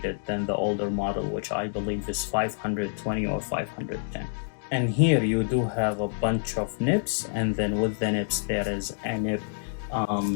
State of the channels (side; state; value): right; silent; digital silence